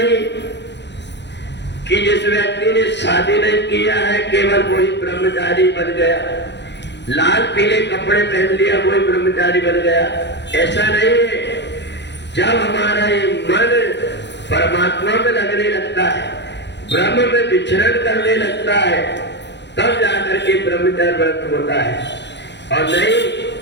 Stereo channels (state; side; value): late; right; 0.51 ms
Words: कि जिस व्यक्ति ने शादी नहीं किया है केवल वही ब्रह्मचारी बन गया, लाल पीले कपड़े पहन लिया वही ब्रह्मचारी बन गया, ऐसा नहीं है। जब हमारा ये मन परमात्मा में लगने लगता है, ब्रह्म में विचरण करने लगता है, तब जाकर के ब्रह्मचर्य व्रत होता है। और नहीं